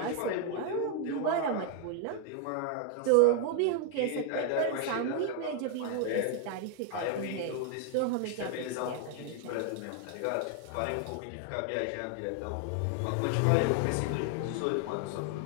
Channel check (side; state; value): both; different; correlation 0.01